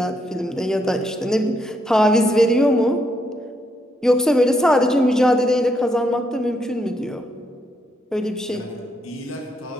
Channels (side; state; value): both; normal; correlation 0.77